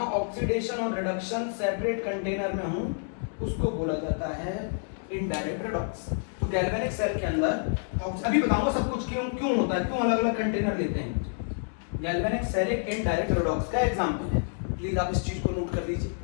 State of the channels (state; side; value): silent; right; digital silence